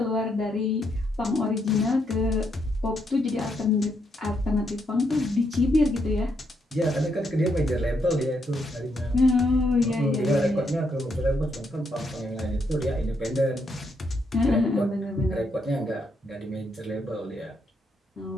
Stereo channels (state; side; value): normal; both; correlation 0.77